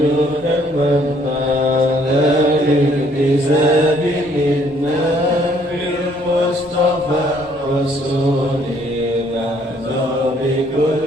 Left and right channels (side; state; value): both; normal; correlation 0.64